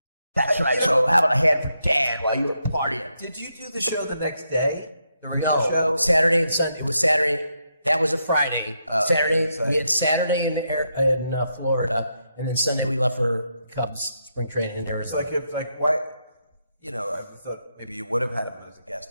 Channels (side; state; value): both; inverted; correlation -0.81